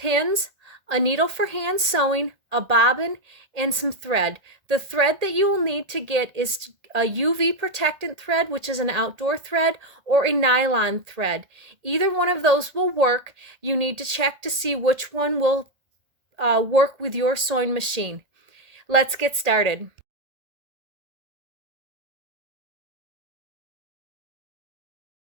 a needle for hand sewing, a bobbin, and some thread. The thread that you will need to get is a UV protectant thread, which is an outdoor thread, or a nylon thread. Either one of those will work. You need to check to see which one will work with your sewing machine. Let's get started.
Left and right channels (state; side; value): late; left; 1.8 ms